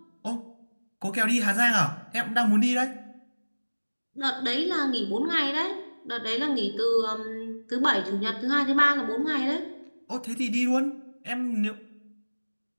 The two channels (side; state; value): both; inverted; correlation -1.00